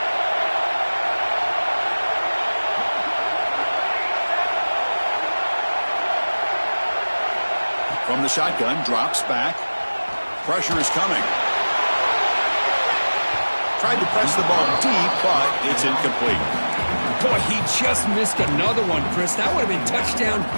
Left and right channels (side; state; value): both; inverted; correlation -1.00